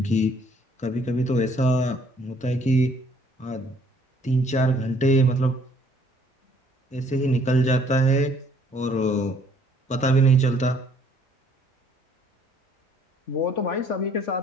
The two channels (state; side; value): normal; both; correlation 0.62